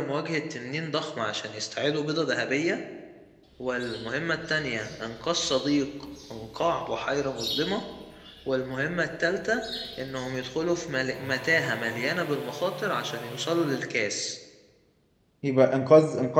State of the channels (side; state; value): both; identical; correlation 1.00